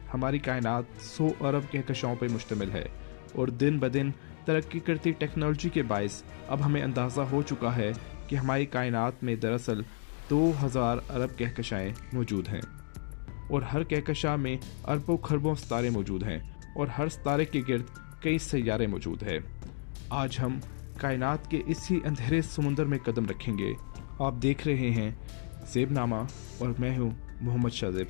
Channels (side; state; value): right; silent; digital silence